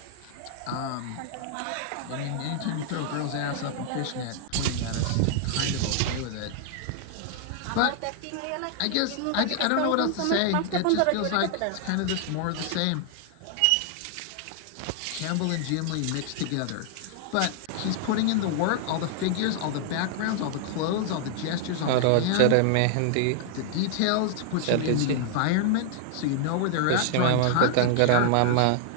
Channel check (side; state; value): both; different; correlation 0.00